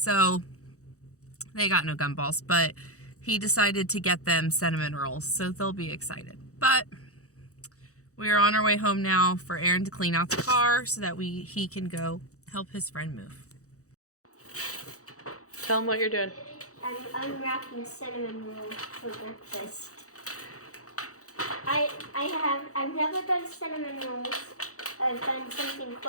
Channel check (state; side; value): late; right; 0.65 ms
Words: they got no gumballs, but he decided to get them cinnamon rolls, so they'll be excited. But we are on our way home now for Aaron to clean out the car so that he can go help his friend move. Tell him what you're doing. I'm unwrapping cinnamon rolls for breakfast. I've never done cinnamon rolls. I've done something